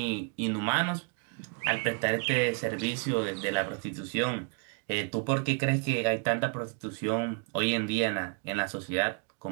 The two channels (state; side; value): quieter; left; 37.5 dB